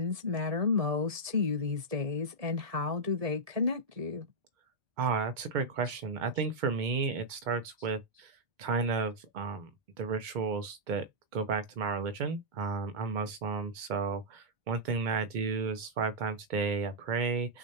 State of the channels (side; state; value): left; late; 2.2 ms